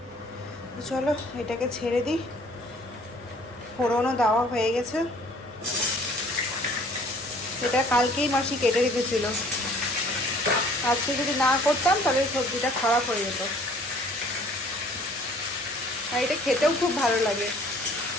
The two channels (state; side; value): normal; both; correlation 0.55